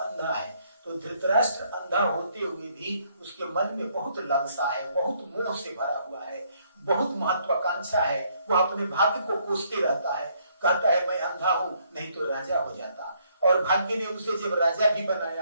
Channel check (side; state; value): both; inverted; correlation -0.69